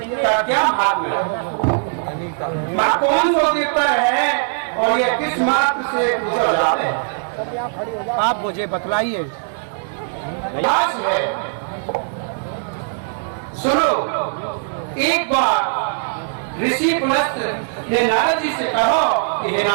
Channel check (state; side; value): silent; left; digital silence